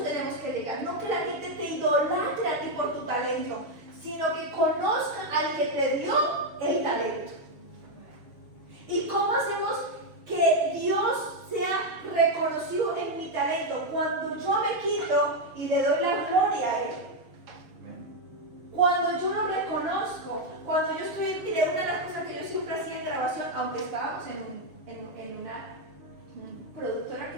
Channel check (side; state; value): left; late; 6.7 ms